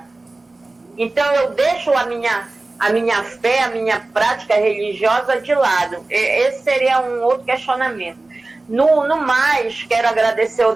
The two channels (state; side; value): quieter; left; 3.1 dB